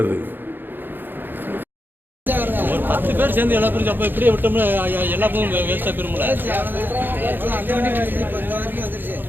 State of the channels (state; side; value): late; left; 0.095 ms